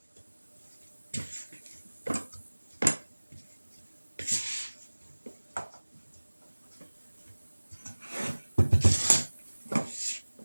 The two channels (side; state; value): both; inverted; correlation -1.00